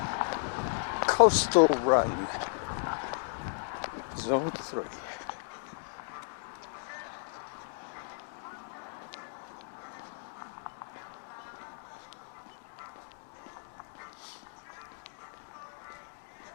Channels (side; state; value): right; silent; digital silence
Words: coastal run, Zone 3.